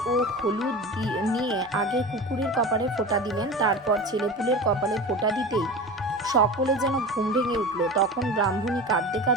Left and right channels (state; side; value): normal; both; correlation 0.31